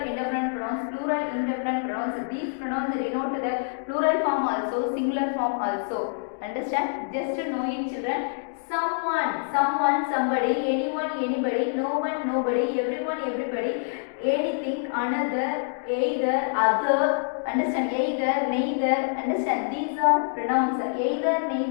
indefinite pronouns, plural indefinite pronouns. These pronouns denote the plural form also, singular form also. Understand? Just know it, children. Someone, somebody, anyone, anybody, no one, nobody, everyone, everybody, anything, another, either, other. Understand? Either, neither. Understand? These are pronouns. Either,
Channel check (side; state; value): right; silent; digital silence